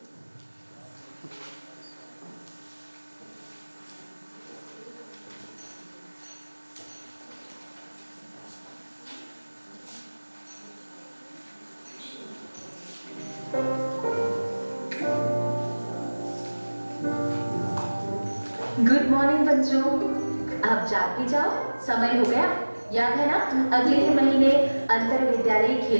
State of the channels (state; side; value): inverted; both; correlation -1.00